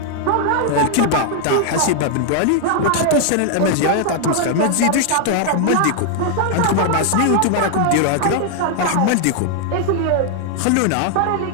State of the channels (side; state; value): both; different; correlation 0.00